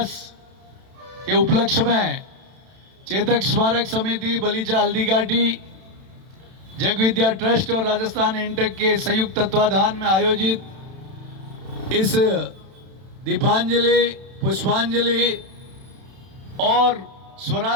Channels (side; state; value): left; late; 31 ms